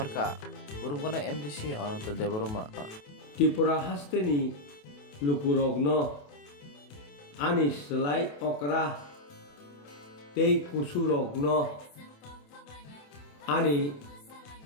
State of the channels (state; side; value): late; right; 28 ms